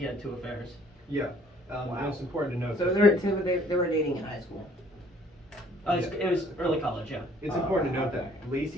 had 2 affairs. yeah. And it's important to note. So that- they were dating in high school. It was early college, yeah. It's important to note that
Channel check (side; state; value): both; normal; correlation 0.59